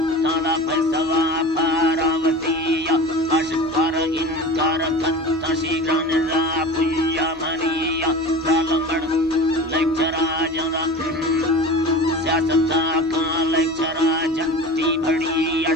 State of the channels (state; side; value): normal; both; correlation 0.34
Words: पैसवा पारावती या अशकार इनकार कत्ता शीघ्रन रा पुया मनिया सालमड़ लेक्चरा जरा सियासता का लेक्चरा जनती बड़ी